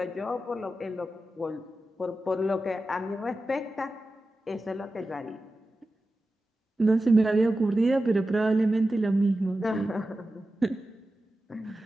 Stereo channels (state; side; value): normal; both; correlation 0.93